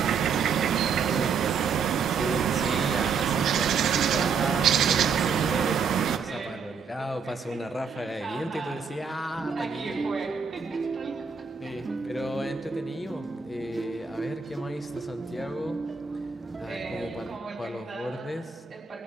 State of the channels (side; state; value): left; quieter; 5.8 dB